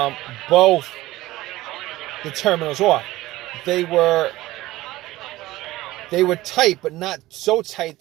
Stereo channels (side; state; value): left; quieter; 17.5 dB